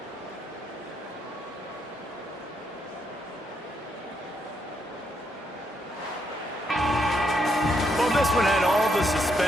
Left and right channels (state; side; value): normal; both; correlation 0.77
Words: Well, this one had all the